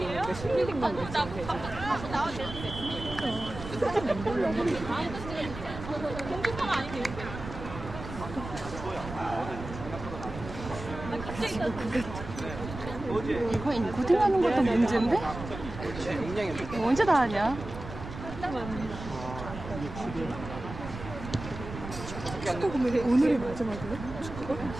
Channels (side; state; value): right; noise; rumble, 10 dB below the sound